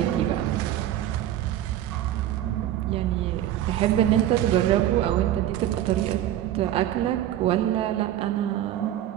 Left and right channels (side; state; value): left; quieter; 12.4 dB